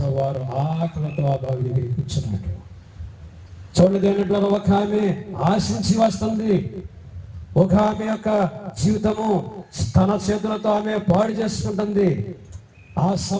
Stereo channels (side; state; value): both; identical; correlation 1.00